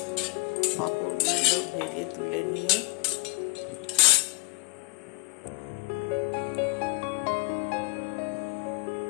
পাঁপড়গুলো ভেজে তুলে নিয়ে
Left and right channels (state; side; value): quieter; right; 31.0 dB